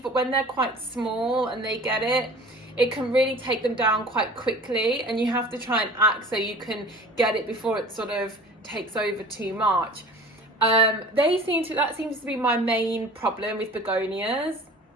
but when they're quite small and they get it, it can really take them down quite quickly, and you have to try and act so you can get it before it sort of takes over too much. That seems to be my main problem with begonias.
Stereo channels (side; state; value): both; normal; correlation 0.43